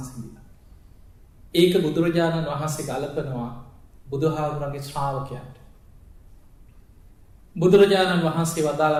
ඒක බුදුරජාණන් වහන්සේ ගලපනවා බුදුහාමුදුරන්ගේ ශ්‍රාවකයන්ට. බුදුරජාණන් වහන්සේ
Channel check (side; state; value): both; identical; correlation 1.00